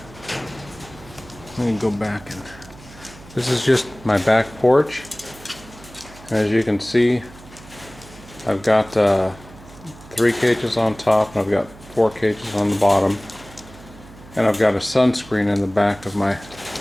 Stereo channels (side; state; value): right; noise; hum, 20 dB below the sound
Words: Let me go back and this is just my back porch. As you can see, I've got 3 cages on top and I've got 4 cages on the bottom. And I've got a sunscreen in the back of my